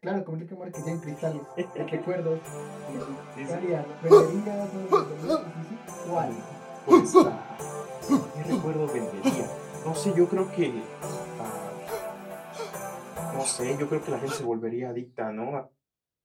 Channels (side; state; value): both; identical; correlation 1.00